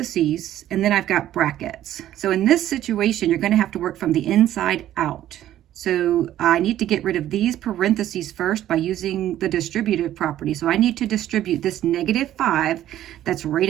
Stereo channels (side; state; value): left; quieter; 12.6 dB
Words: and then I've got brackets. So in this situation, you're going to have to work from the inside out. So I need to get rid of these parentheses first by using the distributive property. So I need to distribute this -5 that's